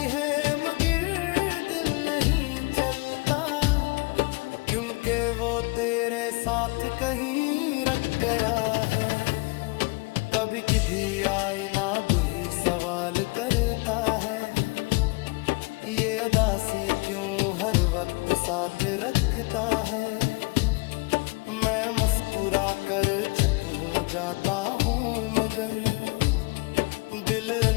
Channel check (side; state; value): right; quieter; 27.2 dB